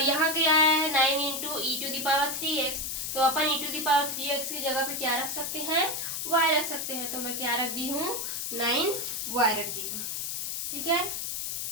यहाँ क्या है 9 इंटू e⁻3x। तो अपन e⁻3x की जगह पे क्या रख सकते हैं, y रख सकते हैं। तो मैं क्या रख दी हूँ, 9y रख दी हूँ। ठीक है,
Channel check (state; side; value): noise; left; hiss, 3 dB below the sound